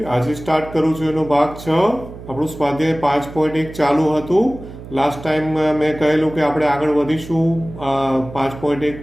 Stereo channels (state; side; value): noise; right; hum, 14 dB below the sound